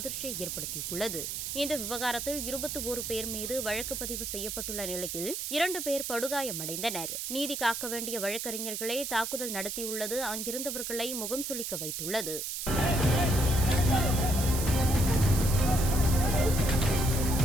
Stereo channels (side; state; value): right; noise; hiss, 4 dB below the sound